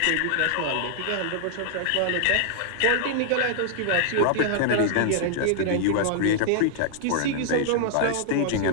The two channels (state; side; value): different; both; correlation -0.01